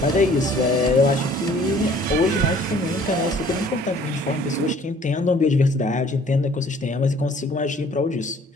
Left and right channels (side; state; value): both; normal; correlation 0.55